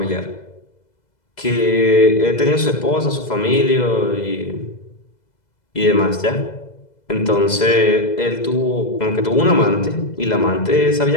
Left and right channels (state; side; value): late; right; 2.0 ms